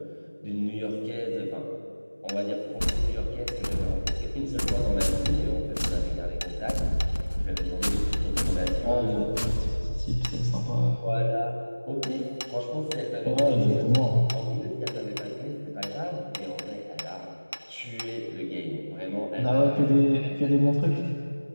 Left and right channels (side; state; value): both; inverted; correlation -1.00